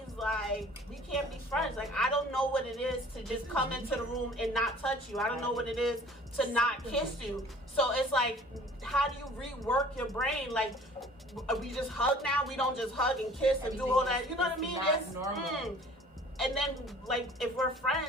like, we can't be friends. Like, I don't know what it is to just come into the room and not touch you. I don't know what it is to not kiss you. So it's like, how do you rework your brain? Like, we just hug now? We don't just hug and kiss and do all that. You know what I mean? It's normal. And then, like, if we're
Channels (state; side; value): normal; both; correlation 0.50